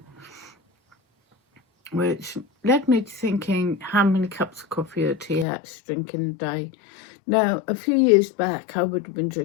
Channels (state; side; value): drops out; right; at 5.5 s